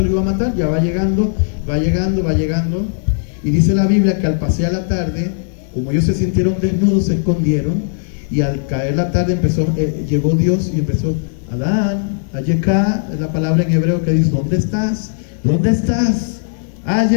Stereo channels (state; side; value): silent; right; digital silence